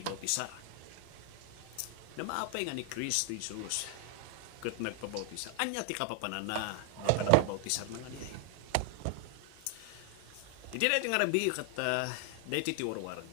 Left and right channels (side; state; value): both; different; correlation 0.00